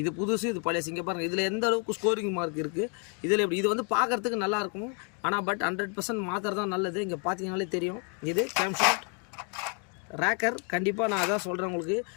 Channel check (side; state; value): right; quieter; 38.3 dB